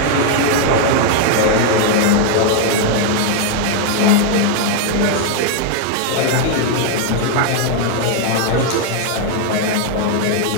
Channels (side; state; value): both; different; correlation 0.00